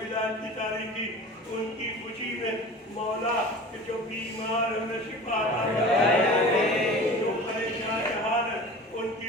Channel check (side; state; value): both; normal; correlation 0.38